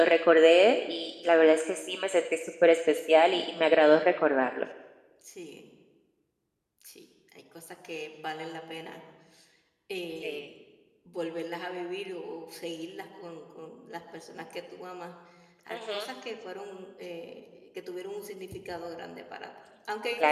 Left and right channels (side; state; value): both; identical; correlation 1.00